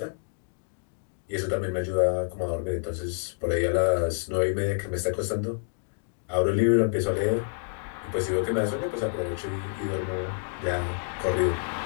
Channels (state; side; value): silent; right; digital silence